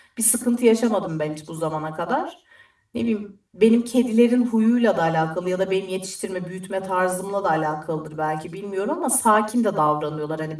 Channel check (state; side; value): identical; both; correlation 1.00